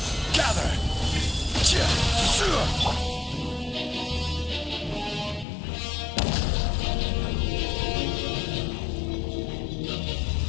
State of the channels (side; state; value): right; drops out; at 5.5 s